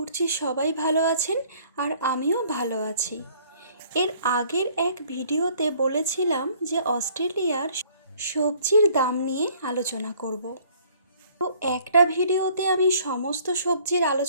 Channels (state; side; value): inverted; both; correlation -0.58